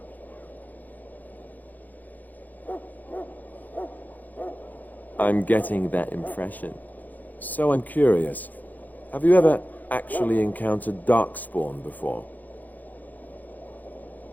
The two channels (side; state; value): right; late; 0.082 ms